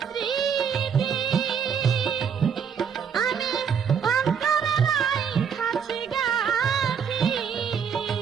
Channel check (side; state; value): left; quieter; 7.2 dB